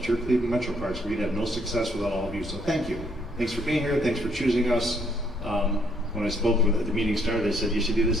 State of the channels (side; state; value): both; normal; correlation 0.68